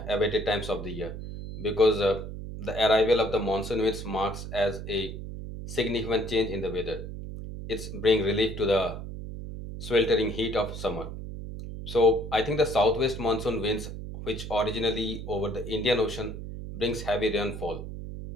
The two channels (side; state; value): right; noise; hum, 8 dB below the sound